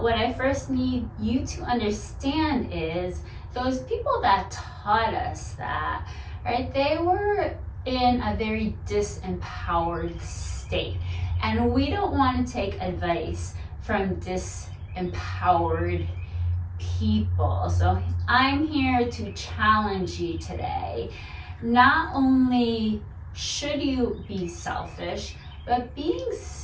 what I first need you to understand is those people that taught us that, right? They were in a very disempowered state. And we don't want to take advice from disempowered people. So I'm here to challenge you today. Not only should you be selfish, but being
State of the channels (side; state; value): both; identical; correlation 1.00